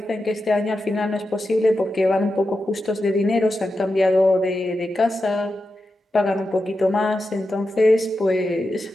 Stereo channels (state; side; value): normal; both; correlation 0.90